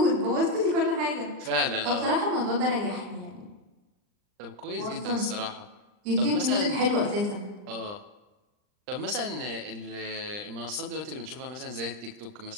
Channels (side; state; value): left; late; 39 ms